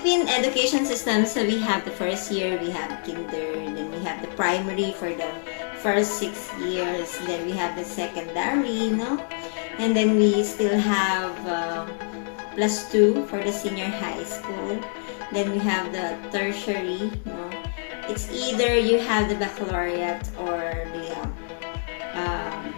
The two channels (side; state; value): right; silent; digital silence